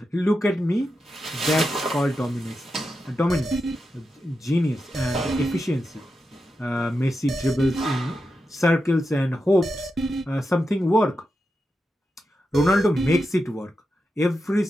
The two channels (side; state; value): both; normal; correlation 0.88